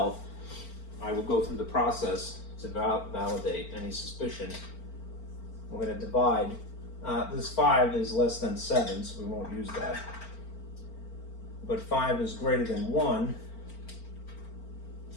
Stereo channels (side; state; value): right; late; 4.4 ms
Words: I will go through the process to validate any suspicion. We're going to divide. This 5 is less than 7, so we won't use that. But 5 is greater than 1.